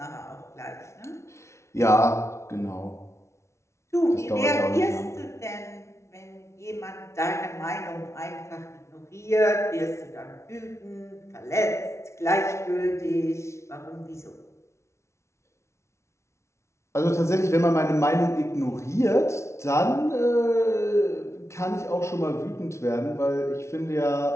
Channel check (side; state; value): right; late; 0.13 ms